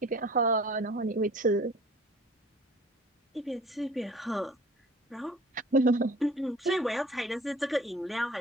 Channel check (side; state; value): both; normal; correlation 0.47